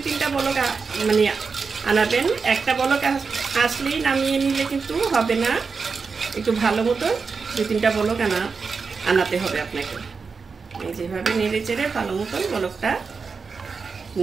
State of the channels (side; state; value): left; quieter; 5.0 dB